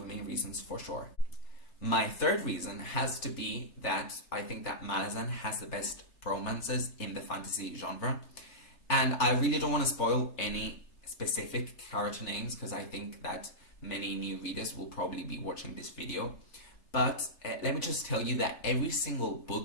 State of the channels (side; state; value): right; late; 3.3 ms